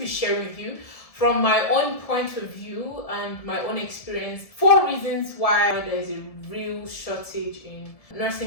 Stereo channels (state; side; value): late; right; 1.7 ms